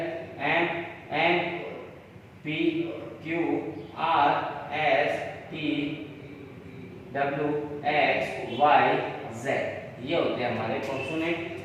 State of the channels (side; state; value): both; identical; correlation 1.00